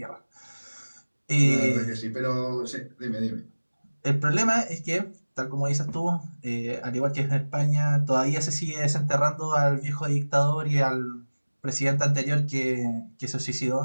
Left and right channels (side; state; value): both; inverted; correlation -1.00